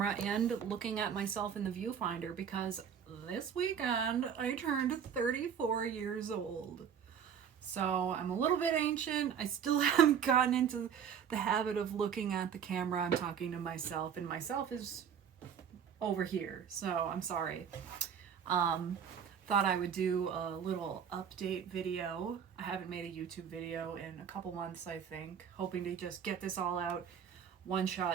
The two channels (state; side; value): quieter; left; 7.9 dB